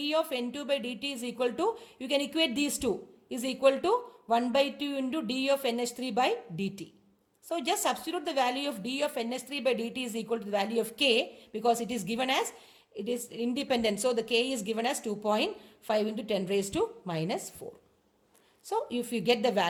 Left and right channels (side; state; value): both; identical; correlation 1.00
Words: of N2 by dt is equal to, you can equate these two, is equal to 1 by 2 into d of NH3 by dt. So just substitute the value of d of NH3 by dt is equal to the value of k, because it is given as, it is independent. So the k is given as 2.5 into 10 raised to minus 4. So if you get the